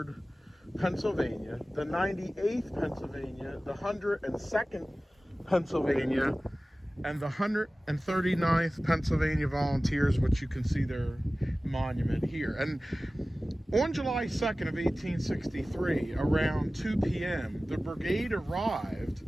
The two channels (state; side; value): normal; both; correlation 0.97